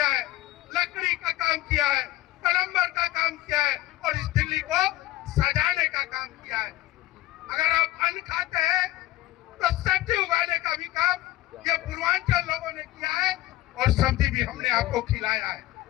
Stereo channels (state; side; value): quieter; right; 16.2 dB